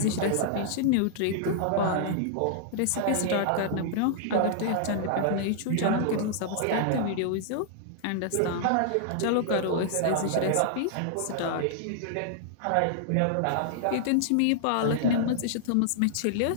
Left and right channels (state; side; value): different; both; correlation -0.01